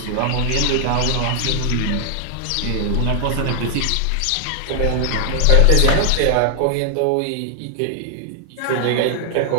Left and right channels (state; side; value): different; both; correlation 0.00